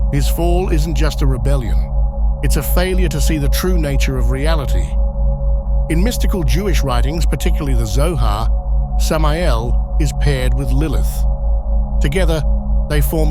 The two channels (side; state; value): both; identical; correlation 1.00